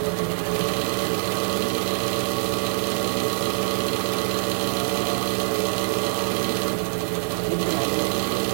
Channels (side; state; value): left; silent; digital silence